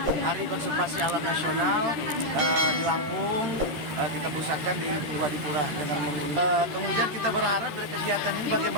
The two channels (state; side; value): late; left; 13 ms